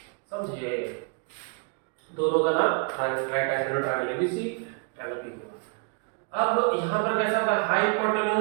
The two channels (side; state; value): left; quieter; 35.9 dB